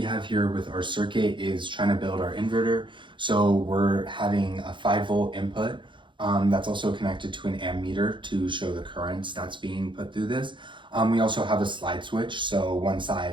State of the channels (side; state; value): left; late; 0.23 ms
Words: have here with our circuit is trying to build our inverter. So we're having a 5-volt input that's also connected to an ammeter to show the currents that's being put through this. We also have a slide switch, so one